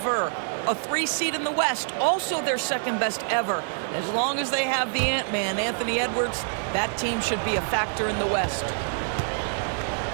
A 3 seed in the West, also their second best ever. As long as they have the Ant-Man, Anthony Edwards, that team should be a factor in the West.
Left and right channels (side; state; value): left; silent; digital silence